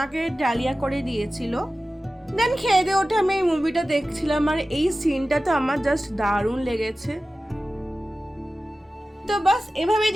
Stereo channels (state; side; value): normal; both; correlation 0.95